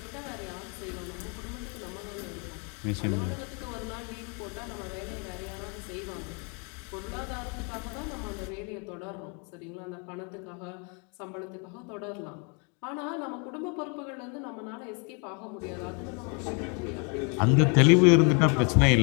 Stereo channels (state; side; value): quieter; right; 35.5 dB